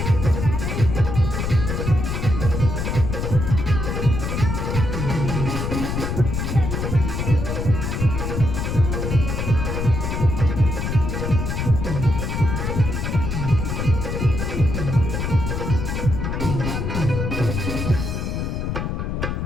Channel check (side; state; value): left; noise; rumble, 2 dB below the sound